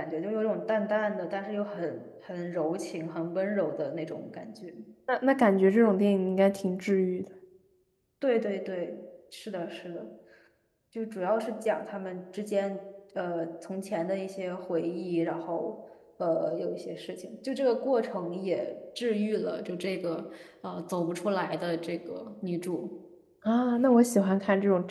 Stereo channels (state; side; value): identical; both; correlation 1.00